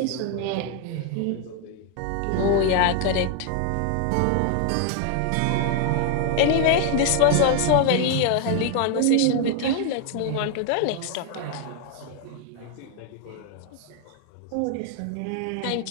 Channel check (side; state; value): both; different; correlation 0.00